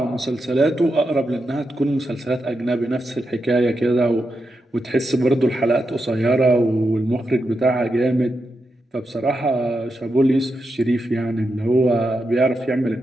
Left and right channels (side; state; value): both; normal; correlation 0.86